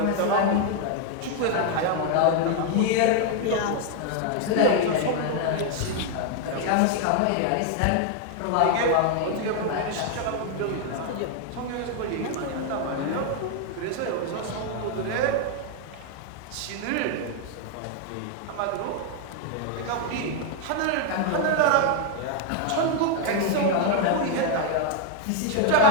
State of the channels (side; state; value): both; different; correlation 0.00